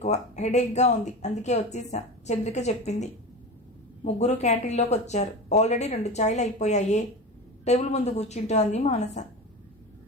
హెడేక్గా ఉంది, అందుకే వచ్చేసా చంద్రిక చెప్పింది. ముగ్గురు క్యాంటీన్లోకి వచ్చారు. ఆల్రెడీ 2 చాయ్లు అయిపోయాయే. టేబుల్ ముందు కూర్చుంటూ అంది మానస.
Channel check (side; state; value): both; normal; correlation 0.27